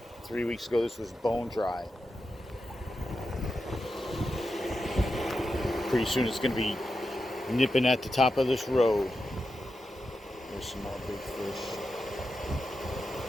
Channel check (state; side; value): normal; both; correlation 0.89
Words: 3 weeks ago, this was bone dry. Pretty soon it's going to be nipping at the top of this road. There's some more big fish.